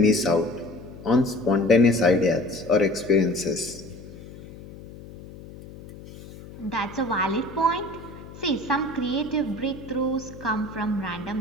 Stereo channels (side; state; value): left; noise; hum, 16 dB below the sound